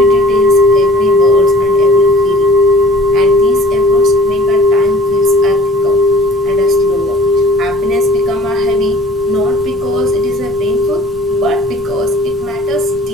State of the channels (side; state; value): both; normal; correlation 0.50